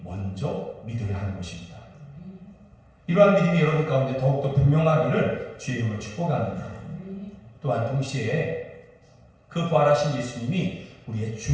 먼저 믿어야 하는 것입니다. 이러한 믿음이 여러분 가운데 더욱더 분명하기를 주의 이름으로 축복합니다. 또한 동시에 그 부활하신 예수님이 우리의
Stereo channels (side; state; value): both; identical; correlation 1.00